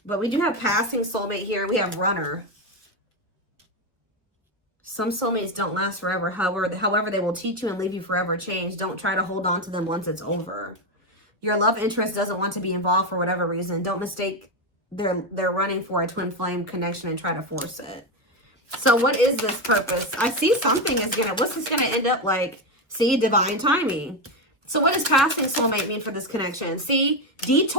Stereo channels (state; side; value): normal; both; correlation 0.11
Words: But we do have passing soulmate here. We have runner. Some soulmates don't last forever. However, they will teach you and leave you forever changed. Don't try to hold on to them once it's over. Your love interest doesn't want to be involved for whatever reason. Don't mistake they're running for a twin flame connection and try to force it. So what is this purpose? I see something is gonna, what's this gonna end up like? See, divine timing. So what does passing soulmate mean for this connection? See,